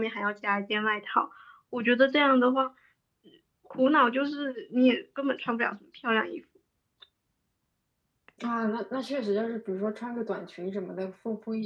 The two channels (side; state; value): both; identical; correlation 1.00